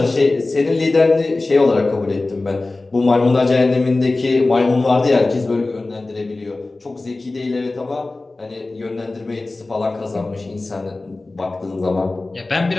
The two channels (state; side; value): quieter; right; 3.2 dB